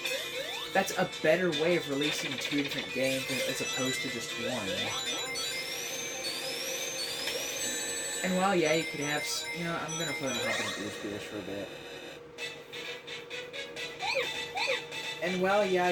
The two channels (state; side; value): identical; both; correlation 1.00